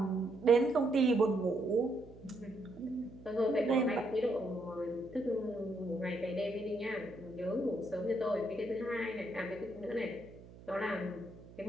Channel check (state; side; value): noise; right; hum, 19 dB below the sound